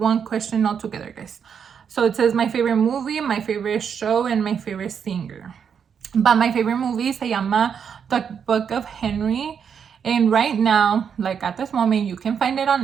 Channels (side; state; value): left; quieter; 7.3 dB